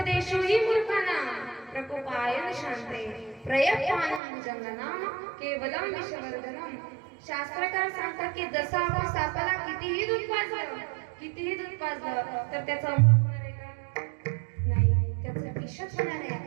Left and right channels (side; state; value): left; drops out; at 4.2 s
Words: मूर्खांना प्रकोपायन शांते प्रयत्नानं भुजंगनाम केवलम विषवर्धनम. शास्त्रकार सांगतात की जसं आपण सापाला कितीही दूध पाजलं तर त्याचा अमृत होणार आहे का? नाही, त्याचं विषच होणार आहे.